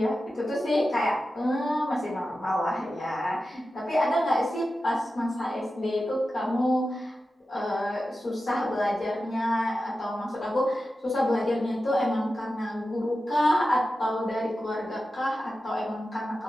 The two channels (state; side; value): normal; both; correlation 0.92